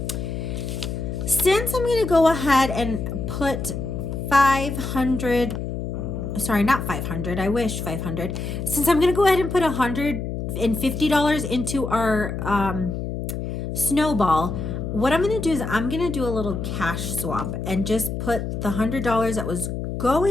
since I'm going to go ahead and put 500, sorry, not 500, I wish 500. Since I'm going to go ahead and put $150 into our snowball, what I'm going to do is I'm going to do a little cash swap and just put the $100 that was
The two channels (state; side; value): noise; left; hum, 4 dB below the sound